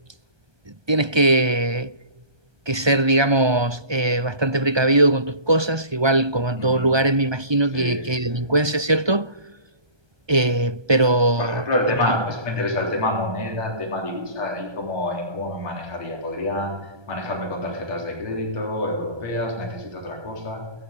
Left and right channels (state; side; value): late; left; 1.2 ms